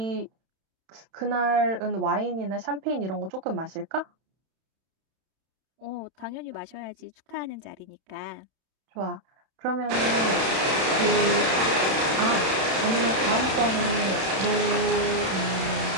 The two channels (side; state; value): left; late; 31 ms